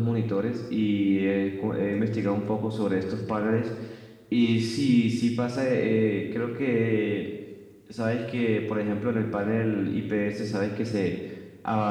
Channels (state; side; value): identical; both; correlation 1.00